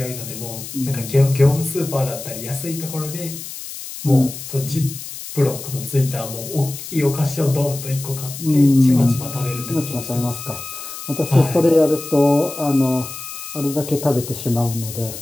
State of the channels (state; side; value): noise; left; hiss, 10 dB below the sound